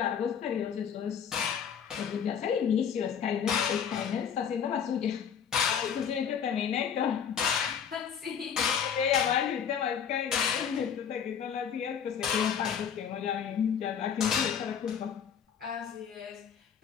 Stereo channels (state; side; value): quieter; right; 7.8 dB